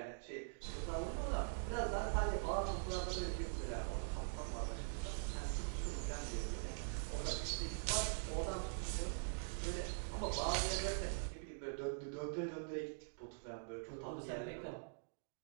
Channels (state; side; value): silent; left; digital silence